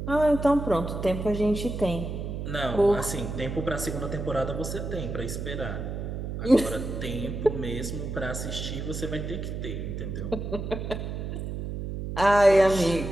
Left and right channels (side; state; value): right; noise; hum, 5 dB below the sound